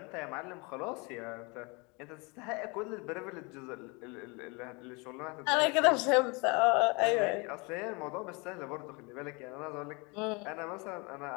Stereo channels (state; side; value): quieter; right; 28.9 dB